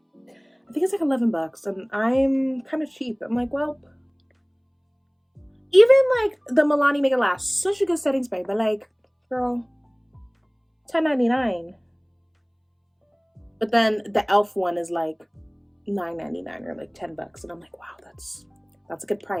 I think it's like $11 and I'm kind of cheap. I'm like, well, even, like, the Milani Make It Last, such a good setting spray, but, like, girl, $10.99. But then the e.l.f. one is like $9.99 or like $10. And I'm like, wow, that's a good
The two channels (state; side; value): identical; both; correlation 1.00